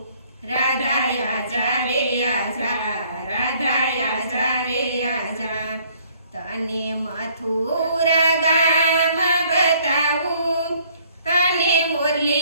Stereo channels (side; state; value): both; inverted; correlation -0.61